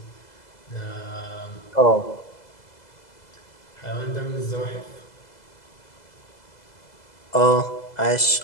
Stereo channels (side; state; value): right; late; 2.0 ms